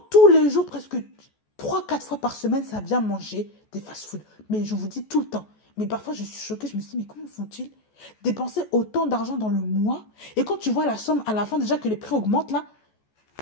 tous les jours, presque 3-4 fois par semaine, ça vient manger des fast-food. Mais je vous dis tout le temps. Mais parfois, je suis choquée. Je me dis, mais comment font-ils dépenser autant d'argent dans le mois? Et quand tu vois la somme à la fin, déjà que les prix augmentent là,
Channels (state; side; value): late; right; 14 ms